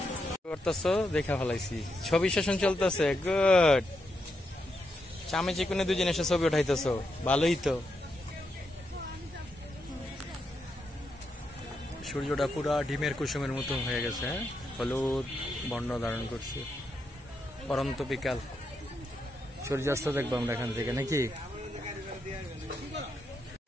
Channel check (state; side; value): normal; both; correlation 0.83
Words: করতেছো, দেখা ফেলাইছি। ছবি সেশন চলতেছে, গুড। চামে চিকুনে দুজন এসে ছবি উঠাইতেছো, ভালোই তো। সূর্যটা পুরা ডিমের কুসুমের মতো হয়ে গেছে, হ্যাঁ, হলুদ বর্ণ ধারণ করছে। পরন্ত বিকাল, সূর্যাস্ত দেখবো আমরা এখান থেকে নাকি।